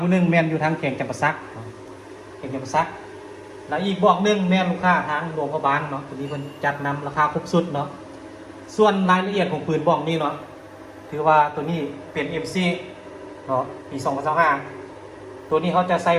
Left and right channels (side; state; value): both; identical; correlation 1.00